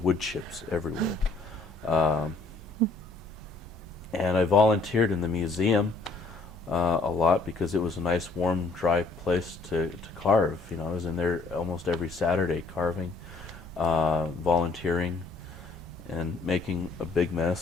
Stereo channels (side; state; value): right; quieter; 3.6 dB